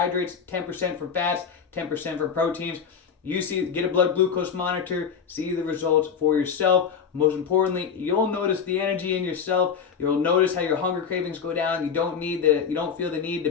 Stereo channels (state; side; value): quieter; right; 6.8 dB